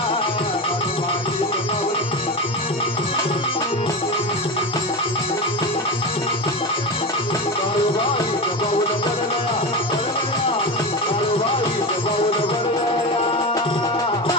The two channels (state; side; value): normal; both; correlation 0.22